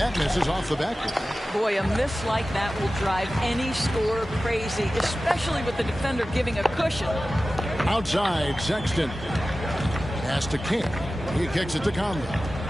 misses off the backboard. Boy, a miss like that will drive any scorer crazy, especially with the defender giving a cushion. Outside, Sexton. Pass to King. He kicks it to Conley.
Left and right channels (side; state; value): both; normal; correlation 0.95